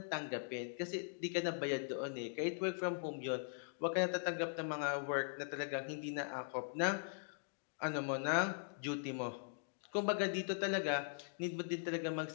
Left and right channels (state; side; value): silent; right; digital silence